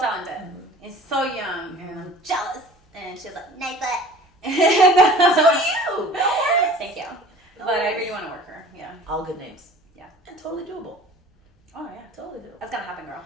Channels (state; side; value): normal; both; correlation 0.45